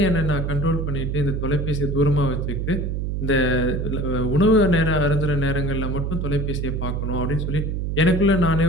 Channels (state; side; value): noise; right; hum, 2 dB below the sound